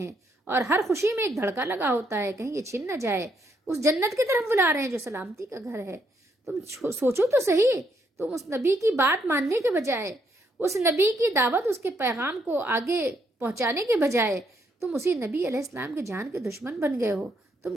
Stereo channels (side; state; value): both; normal; correlation 0.74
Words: اور ہر خوشی میں ایک دھڑکا لگا ہوتا ہے کہیں یہ چھن نہ جائے۔ اس جنت کی طرف بلا رہے ہیں جو سلامتی کا گھر ہے۔ تم سوچو تو صحیح، تم اس نبی کی بات ماننے کے بجائے، اس نبی کی دعوت، اس کے پیغام کو آگے پہنچانے کے بجائے تم اسی نبی علیہ السلام کے جان کے دشمن بن گئے ہو۔